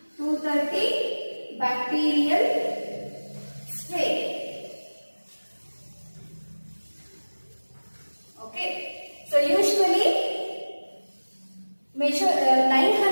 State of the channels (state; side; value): inverted; both; correlation -1.00